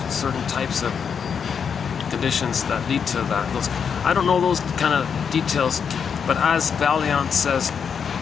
certain types of conditions that lead to that. I don't know those kind of details, but as Valiant says,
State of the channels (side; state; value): right; quieter; 6.8 dB